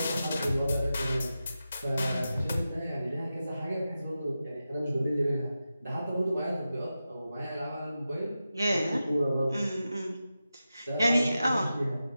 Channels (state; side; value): inverted; both; correlation -0.92